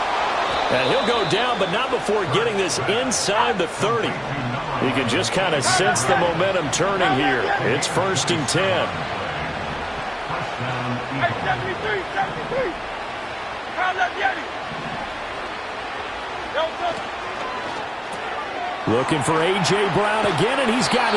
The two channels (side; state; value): both; identical; correlation 1.00